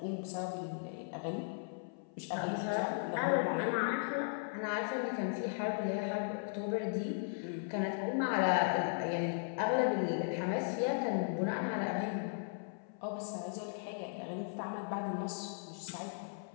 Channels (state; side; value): silent; right; 53 dB below the other